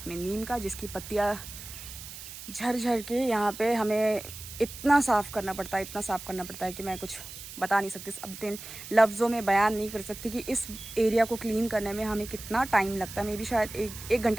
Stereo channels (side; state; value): right; noise; hiss, 12 dB below the sound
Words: में नीम का, जिसकी पत्तियाँ झड़ झड़ के यहाँ पे हमें इतना साफ़ करना पड़ता है, इतना साफ़ करना पड़ता है कि मैं कुछ बता नहीं सकती, अपने लफ्ज़ों में बयान नहीं कर सकती कि इस एरिया को क्लीन करने में हमें कितना टाइम लगता है। मे बी शायद एक